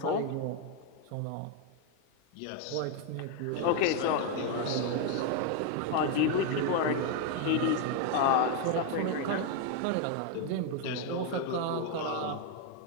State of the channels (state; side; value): different; both; correlation 0.01